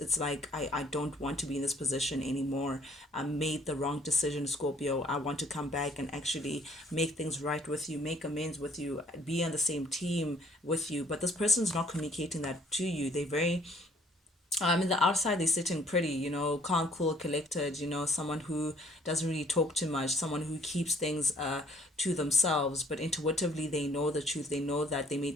like, I don't want to be in this position anymore. I made the wrong decision, Scorpio. I want to come back and actually make things right with you, make amends with you, be on the same team with you. But this person's not communicating that to you. They very in the outside they're sitting pretty, calm, cool, collected, someone who doesn't really talk too much, someone who keeps things to themselves, but intuitively they know the truth. They know that they made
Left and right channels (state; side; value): normal; both; correlation 0.60